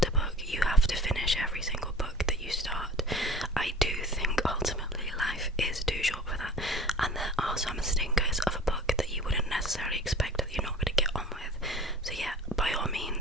a book, you have to finish every single book that you start. I do think ultimately life is too short for that, and there are some stinkers of a book that you wouldn't necessarily expect that you're not going to get on with. So yeah, by all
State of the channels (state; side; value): normal; both; correlation 0.43